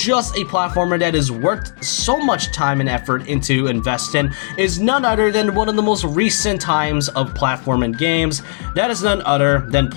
a platformer that is worked so much time and effort into investing, is none other than one of the most recent times of platforming games. That is none other than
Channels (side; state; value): right; silent; digital silence